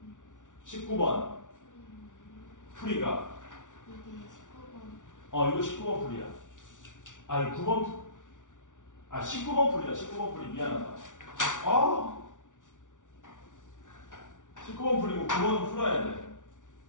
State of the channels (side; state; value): right; late; 0.87 ms